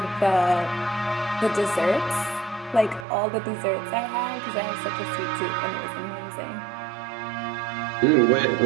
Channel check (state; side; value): drops out; left; at 3.1 s